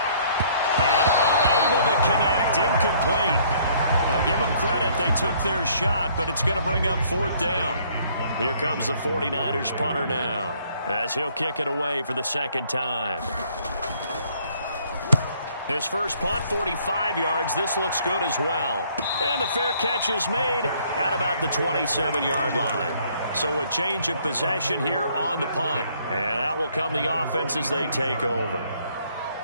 And unable to connect, incomplete. I'll give them credit, they took their shot, but it's going to bring up fourth down. Here comes the 49ers punter now, as he'll kick it away for the second time. His first punt, 45 yards. This looks good as well. And the fair catch is made at about the 27-yard line. So a change of possession here on the punt. And out will come the offense as they take over.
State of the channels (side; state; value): both; inverted; correlation -0.63